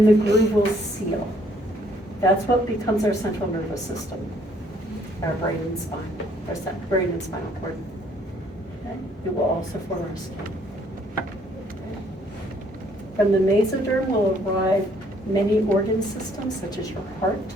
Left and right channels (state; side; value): normal; both; correlation 0.64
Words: the groove will seal. That's what becomes our central nervous system. our brain and spine, brain and spinal cord. Okay? It will also form our skin. Okay? From the mesoderm will arrive many organ systems, such as your heart.